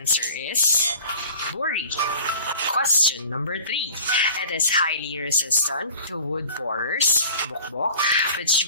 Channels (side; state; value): both; inverted; correlation -0.44